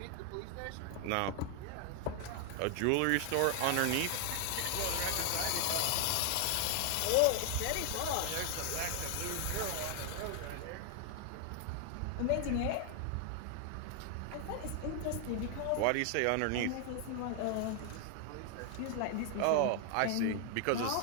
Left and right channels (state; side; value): different; both; correlation 0.00